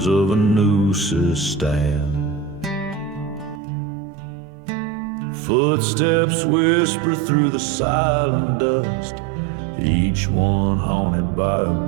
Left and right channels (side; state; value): left; drops out; at 3.6 s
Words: of a noose's stand. Footsteps whisper through the silent dust, each one haunted by a